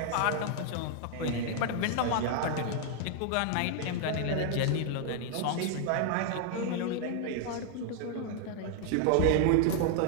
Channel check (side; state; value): both; different; correlation 0.00